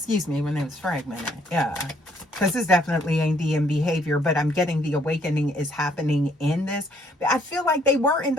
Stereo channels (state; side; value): normal; both; correlation 0.66